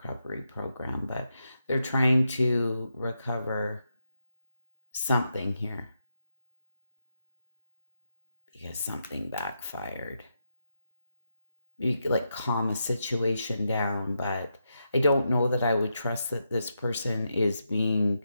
program, but they're trying to recover something here because something backfired. You could like calm a situation down, but I don't know that I would trust that this person is being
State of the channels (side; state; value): both; inverted; correlation -0.84